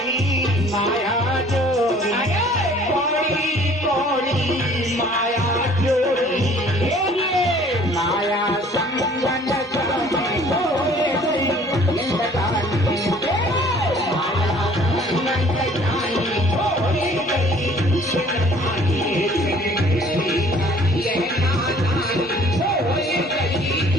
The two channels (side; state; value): both; normal; correlation 0.54